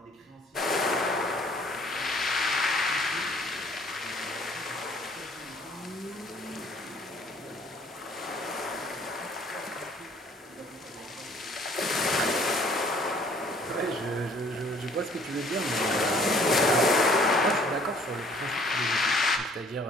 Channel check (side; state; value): both; normal; correlation 0.57